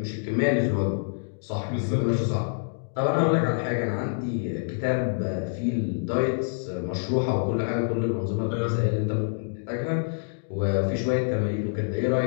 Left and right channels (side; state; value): right; silent; digital silence